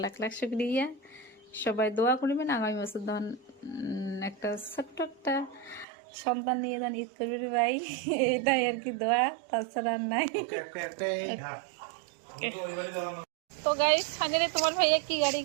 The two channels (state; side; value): drops out; left; at 5.9 s